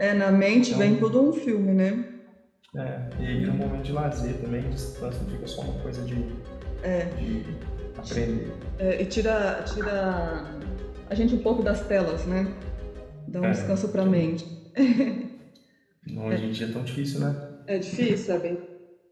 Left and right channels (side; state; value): both; identical; correlation 1.00